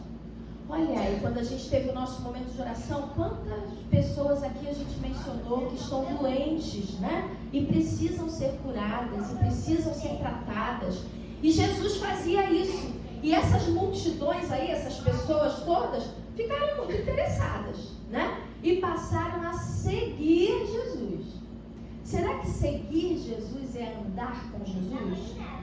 Olha aí, quando a gente teve o nosso momento de oração, quantas pessoas aqui a gente mencionou que estão doentes, né? E precisam ser curadas, e precisam ser tratadas. E Jesus fazia isso. E essas multidões aí, essas pessoas todas, ficaram muito interessadas, né? E passaram a seguir Jesus. Será que seguir Jesus é andar com Jesus?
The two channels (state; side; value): identical; both; correlation 1.00